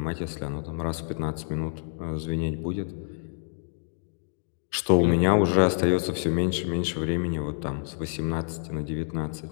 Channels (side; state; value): right; silent; digital silence